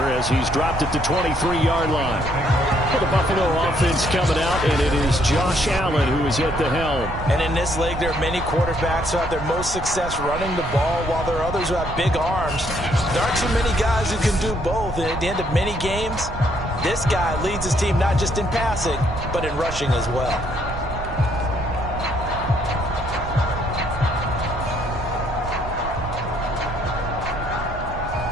as he's dropped it to 23-yard line. For the Buffalo offense coming out, and it is Josh Allen who is at the helm. And in this league, there are many quarterbacks who have their most success running the ball, while there are others who have big arms. There aren't too many guys who can do both, and at the end of many games, this guy leads his team not just in passing, but in rushing as well.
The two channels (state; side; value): noise; right; rumble, 9 dB below the sound